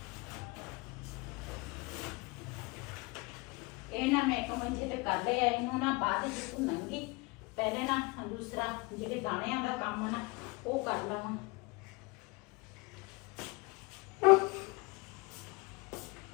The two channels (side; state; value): right; quieter; 26.0 dB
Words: ਇਹ ਨਾ ਮੈਂ ਇੱਕ ਮੰਜੇ ਤੇ ਕਰ ਲਿਆ ਇਹਨੂੰ ਨਾ ਬਾਅਦ ਵਿੱਚ ਭੁੰਨਾਂਗੀ ਪਹਿਲੇ ਨਾ ਦੂਸਰਾ ਜਿਹੜੇ ਦਾਣਿਆਂ ਦਾ ਕੰਮ ਨਾ ਉਹ ਕਰ ਲਵਾਂ।